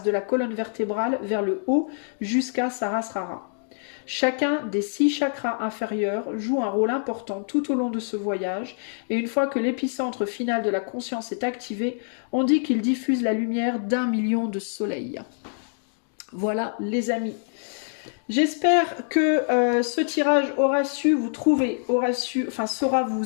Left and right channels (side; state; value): right; silent; digital silence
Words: de la colonne vertébrale vers le haut jusqu'à Sahasrara. Chacun des 6 chakras inférieurs joue un rôle important tout au long de ce voyage, et une fois que l'épicentre final de la conscience est activé, on dit qu'il diffuse la lumière d'1 million de soleils. Voilà les amis. J'espère que ce tirage saura